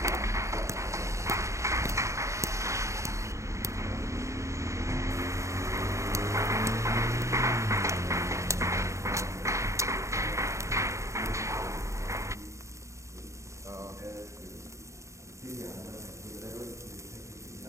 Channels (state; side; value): late; left; 0.14 ms